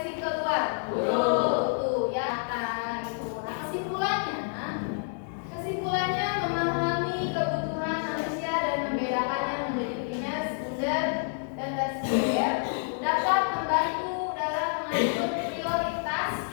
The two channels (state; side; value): silent; right; 59 dB below the other